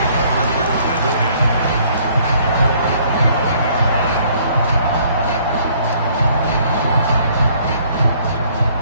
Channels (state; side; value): inverted; both; correlation -0.61